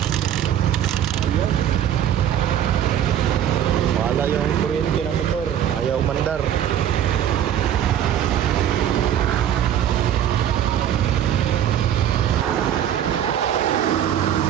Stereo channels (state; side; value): quieter; left; 10.3 dB